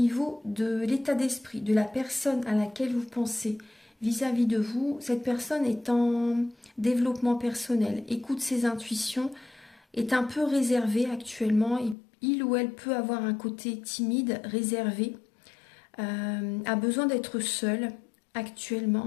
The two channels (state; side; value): drops out; right; at 12.0 s